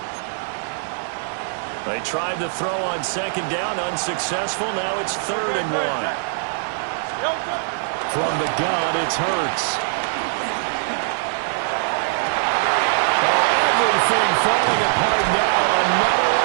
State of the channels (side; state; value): left; silent; digital silence